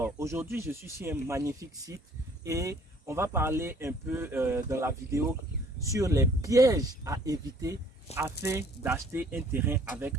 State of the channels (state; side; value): normal; both; correlation 0.57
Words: aujourd'hui, je suis sur un magnifique site et on va parler un peu dans la vidéo sur les pièges à éviter afin d'acheter un terrain avec